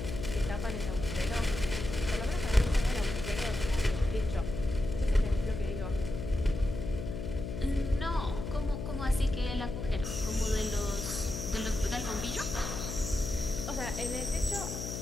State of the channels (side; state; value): left; noise; hum, 5 dB below the sound